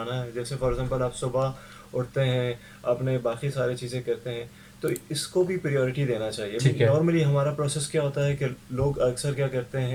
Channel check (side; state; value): both; identical; correlation 1.00